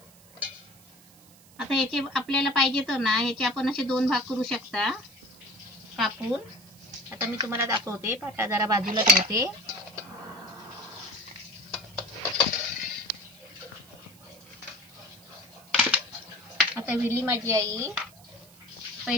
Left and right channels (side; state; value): right; noise; hiss, 25 dB below the sound